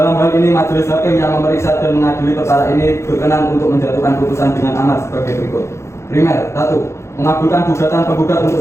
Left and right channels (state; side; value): late; right; 0.13 ms